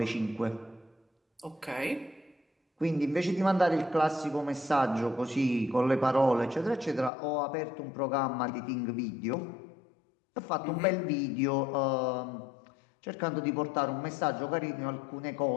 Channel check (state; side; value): drops out; right; at 7.1 s